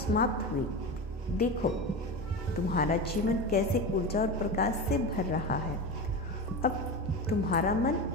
हुई। देखो, तुम्हारा जीवन कैसे ऊर्जा और प्रकाश से भर रहा है। अब तुम्हारा मन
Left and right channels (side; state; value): both; normal; correlation 0.23